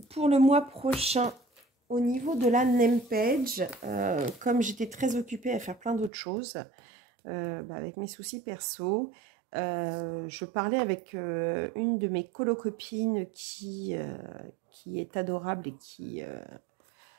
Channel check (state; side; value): drops out; left; at 6.1 s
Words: le mois prochain, au niveau de la name page, comme j'étais très occupée à faire plein d'autres choses, avec mes soucis perso, je parlais avec une de mes colo-copines qui est adorable et qui